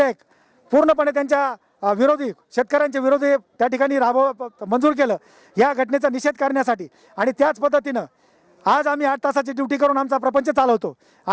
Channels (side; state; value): both; identical; correlation 1.00